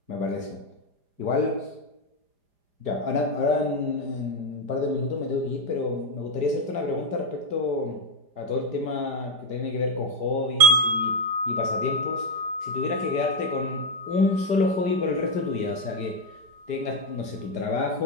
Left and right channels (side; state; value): left; late; 4.9 ms